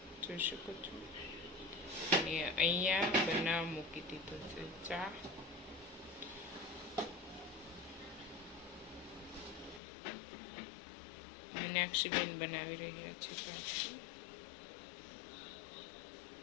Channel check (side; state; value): right; drops out; at 9.8 s